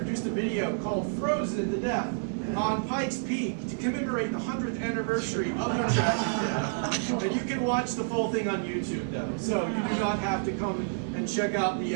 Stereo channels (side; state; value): left; silent; digital silence